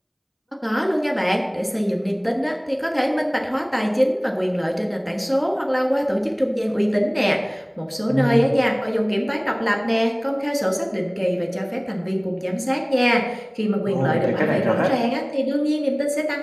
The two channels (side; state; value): both; identical; correlation 1.00